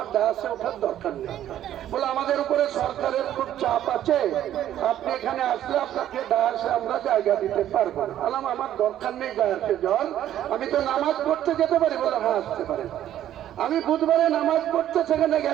ডায়াসে ওঠার দরকার নেই, বলে আমাদের উপরে সরকারের খুব চাপ আছে, আপনি এখানে আসলে আপনাকে ডায়াসে আমরা জায়গা দিতে পারবো না। বললাম আমার দরকার নেই ডায়াসে যাওয়ার, আমি তো নামাজ পড়তে যেতে পারি। বলে হ্যাঁ আসতে পারেন। আমি বুধবারে নামাজ পড়তে সেখানে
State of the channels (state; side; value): quieter; left; 11.7 dB